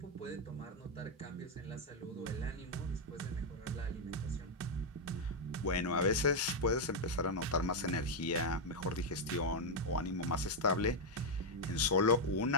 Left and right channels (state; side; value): normal; both; correlation 0.00